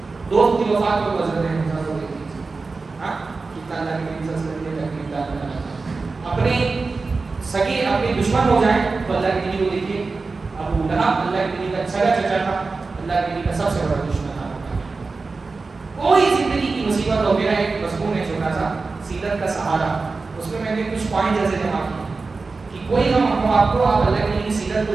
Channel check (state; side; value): quieter; left; 4.0 dB